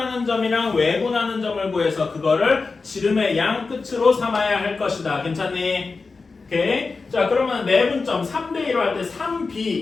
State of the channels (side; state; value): right; quieter; 4.2 dB